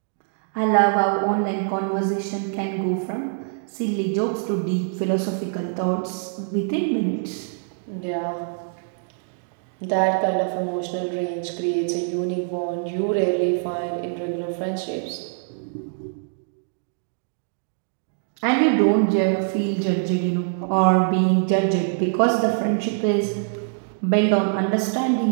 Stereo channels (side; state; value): left; silent; digital silence